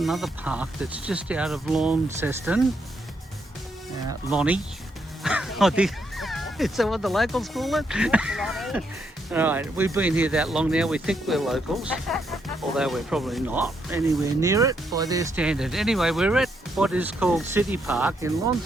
park that's just out of Launceston. Lonnie, I think. Is that what the locals call it? Alright, we've been here that long now, we think we're locals, although we're probably not anywhere near it by their standard. Anyway, we're at what is called City Park in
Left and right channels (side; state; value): both; normal; correlation 0.77